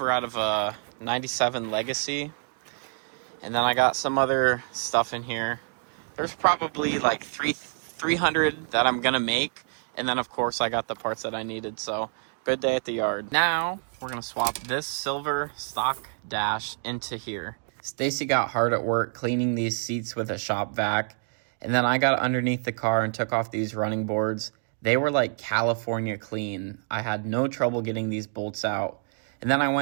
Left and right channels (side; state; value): left; silent; 60 dB below the other